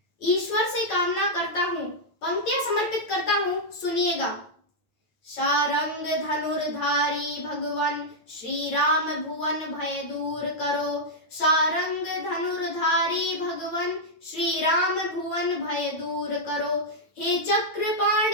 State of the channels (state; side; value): late; right; 9.0 ms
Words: ईश्वर से कामना करता हूँ, पंक्तियां समर्पित करता हूँ, सुनिएगा। शारंग धनुर्धारी भगवन श्री राम भुवन भय दूर करो, शारंग धनुर्धारी भगवन श्री राम भुवन भय दूर करो। हे